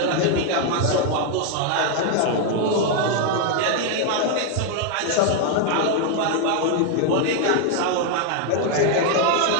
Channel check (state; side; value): different; both; correlation 0.00